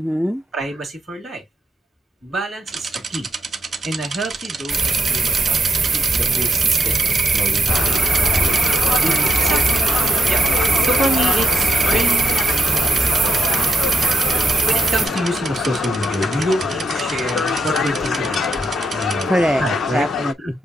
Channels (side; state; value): both; normal; correlation 0.79